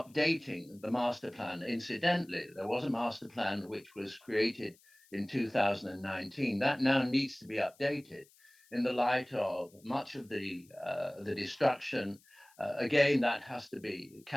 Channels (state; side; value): noise; left; hiss, 29 dB below the sound